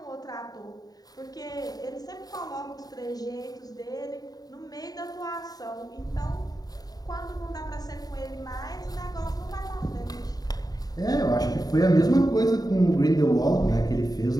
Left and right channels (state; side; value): late; right; 0.18 ms